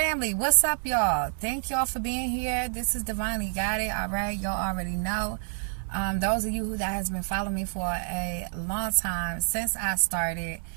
what's up, y'all? Thank y'all for being here. This is Divinely Guided. All right, y'all already know. Those of you who that has been following me for a long time, since I started,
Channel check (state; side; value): silent; left; 59 dB below the other